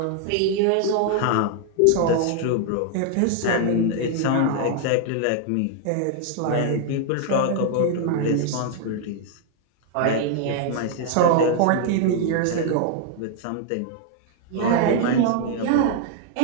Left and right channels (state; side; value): different; both; correlation 0.00